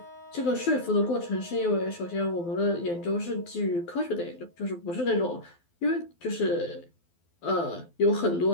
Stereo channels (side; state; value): right; late; 12 ms